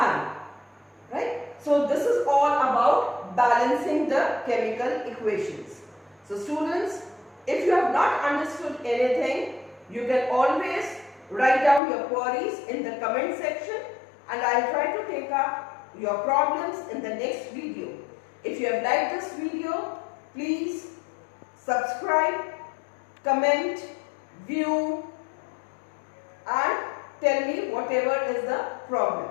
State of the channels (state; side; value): drops out; right; at 11.8 s